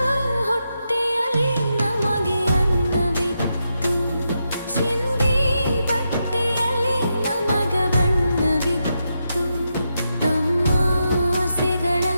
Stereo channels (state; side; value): inverted; both; correlation -0.85